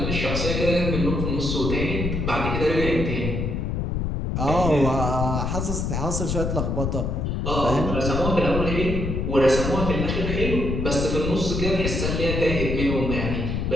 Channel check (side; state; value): left; noise; rumble, 1 dB below the sound